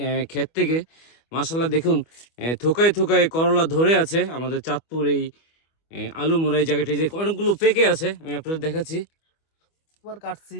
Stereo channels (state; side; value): late; right; 25 ms